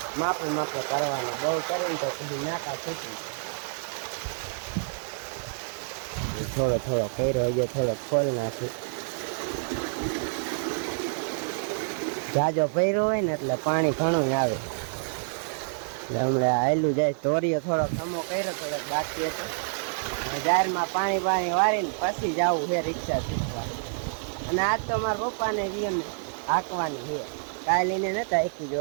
માપે કરવાનું, બહુ કરીને તો કીધું નાકા છૂટી. થોડો કર્યો હજુ થોડો ખોલ નાખી. જાજો ભર્યો હોય ને એટલે પાણી ઘણું આવે. એટલે હમણાં આયલું જાય. ધોરીઓ થોડો ખમો કર્યો, થોડોક બાકી હતો. જાહેરમાં પાણી વારીને પછી જવું છે રિક્ષા શીખવા. અને આજ તો મારા પપ્પાને વિયમને હાંકવાની છે. કાલે એને નતા હાંકી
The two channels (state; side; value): silent; left; digital silence